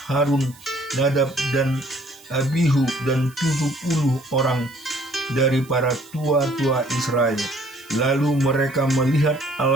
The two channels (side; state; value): right; noise; hiss, 23 dB below the sound